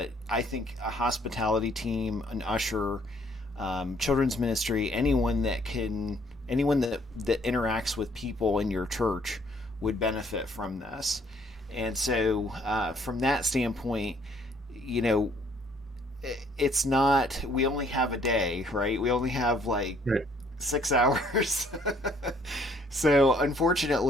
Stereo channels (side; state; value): both; normal; correlation 0.63